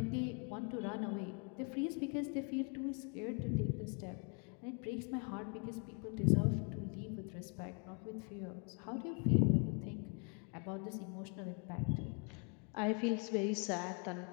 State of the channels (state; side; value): quieter; right; 36.7 dB